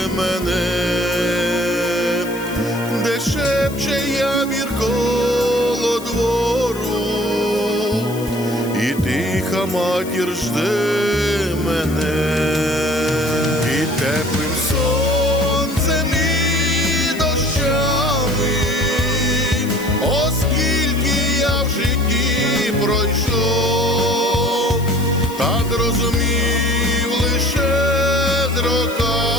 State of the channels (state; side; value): noise; left; hiss, 16 dB below the sound